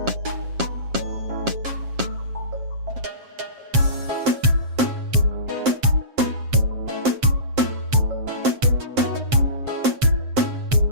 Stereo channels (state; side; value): late; left; 7.5 ms